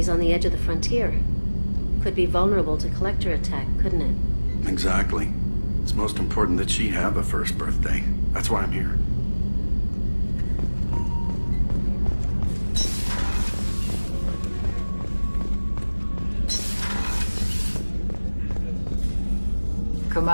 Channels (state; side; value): inverted; both; correlation -1.00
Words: on the edge of the frontier. Could be vulnerable to Collector attack, couldn't it? Exactly. It's most important that she have a first birthday. That's why I'm here.